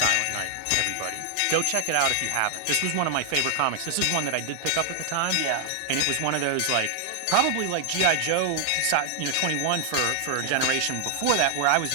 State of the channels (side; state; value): both; different; correlation 0.00